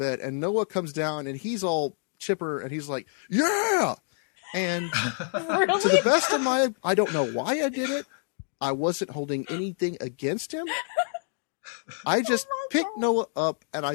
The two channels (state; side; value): silent; right; 60 dB below the other